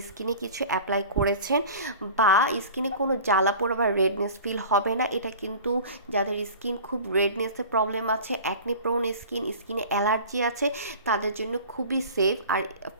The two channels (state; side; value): inverted; both; correlation -0.40